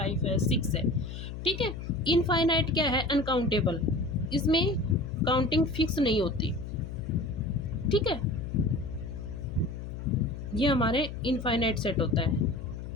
है 6 है। ठीक है, इनफाइनाइट क्या है, अनकाउंटेबल, इसमें काउंटिंग फिक्स नहीं होती। ठीक है, ये हमारे इनफाइनाइट सेट होता है।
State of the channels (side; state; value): left; noise; hum, 8 dB below the sound